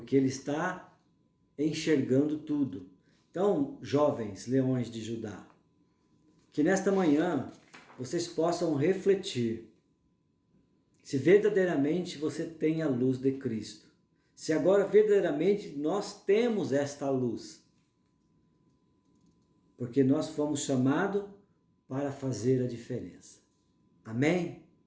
ele está enxergando tudo. Então, jovens leões de Judá, que nesta manhã vocês possam refletir se verdadeiramente você tem a luz de Cristo. Se agora verdadeiramente nós temos esta luz. Porque nós fomos chamados para fazer a diferença. Amém?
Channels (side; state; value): both; identical; correlation 1.00